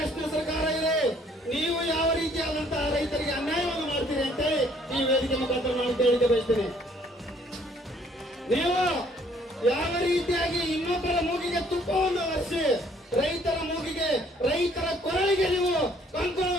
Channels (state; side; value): normal; both; correlation 0.62